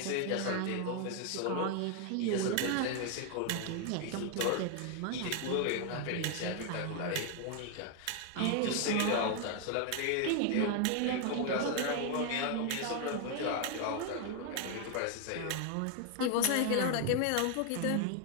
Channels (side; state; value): both; different; correlation 0.01